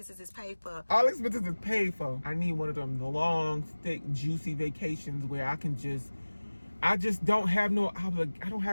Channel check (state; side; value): inverted; both; correlation -1.00